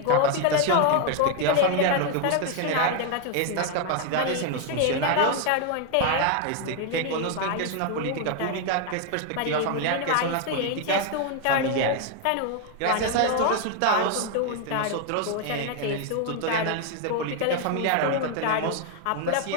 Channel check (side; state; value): both; different; correlation 0.01